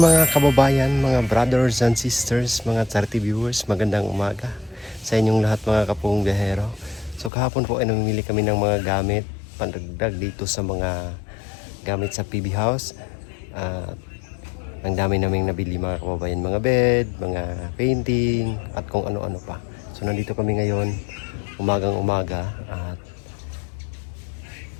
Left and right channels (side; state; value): right; drops out; at 7.3 s